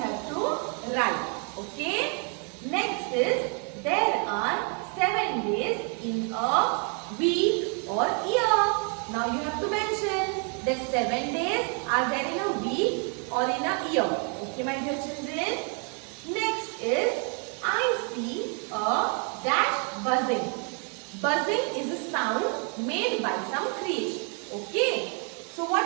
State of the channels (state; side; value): quieter; left; 38.8 dB